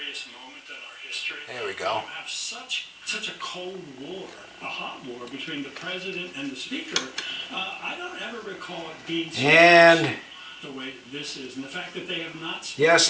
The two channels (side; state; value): both; identical; correlation 1.00